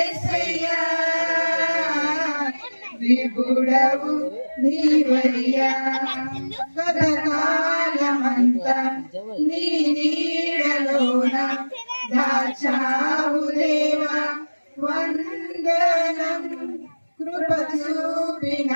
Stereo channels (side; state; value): both; inverted; correlation -1.00